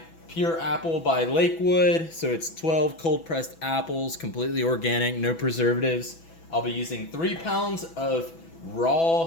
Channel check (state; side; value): late; right; 6.1 ms